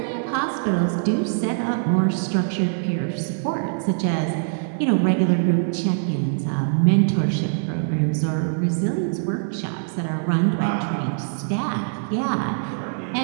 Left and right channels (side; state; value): left; silent; digital silence